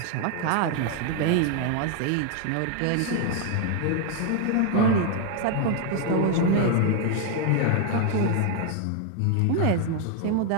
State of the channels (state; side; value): different; both; correlation 0.01